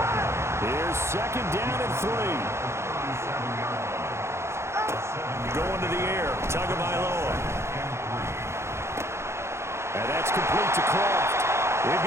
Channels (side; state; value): left; late; 0.13 ms